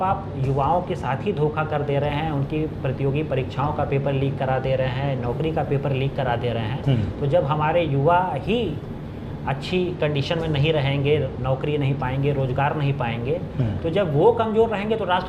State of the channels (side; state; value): both; identical; correlation 1.00